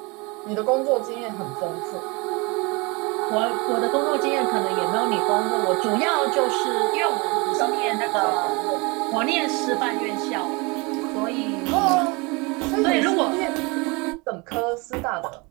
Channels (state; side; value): quieter; left; 27.6 dB